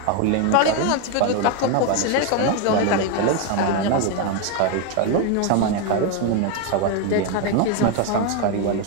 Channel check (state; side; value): different; both; correlation 0.02